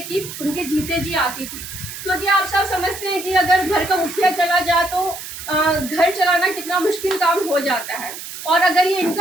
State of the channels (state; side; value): noise; right; hiss, 10 dB below the sound